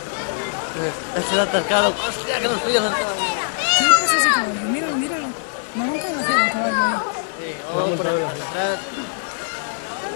Es el atascado. Hostia, que nos pillan atascados. ¿Qué le pasa a ese caballo? Míralo, míralo. Me han conocido el caballo ahí. Sí, vamos por atrás.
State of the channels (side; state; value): right; silent; 64 dB below the other